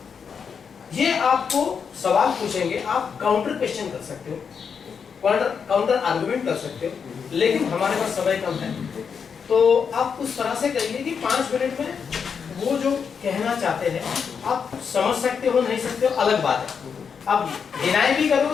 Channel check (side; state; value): right; quieter; 6.5 dB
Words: ये आपको सवाल पूछेंगे, आप काउंटर क्वेश्चन कर सकते हो, काउंटर आर्गुमेंट कर सकते हो, लेकिन हमारे पास समय कम है, तो आप उस तरह से करिए कि 5 मिनट में वो जो कहना चाहते हैं आप समझ सकते हो, नहीं सकते हो अलग बात है। आप डिनाई भी